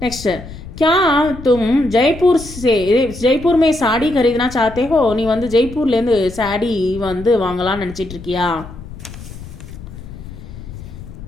நெக்ஸ்ட் क्या तुम जयपुर में साड़ी खरीदना चाहते हो, நீ வந்து ஜெய்ப்பூர்லேருந்து சாடி வந்து வாங்கலாம்னு நினச்சிட்டு இருக்கியா.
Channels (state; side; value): noise; left; rumble, 14 dB below the sound